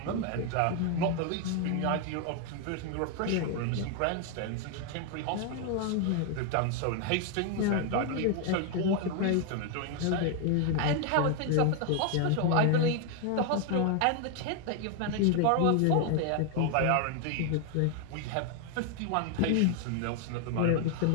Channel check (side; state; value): both; different; correlation 0.00